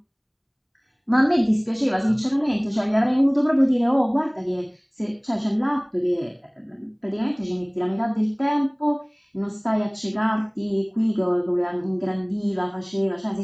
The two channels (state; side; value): identical; both; correlation 1.00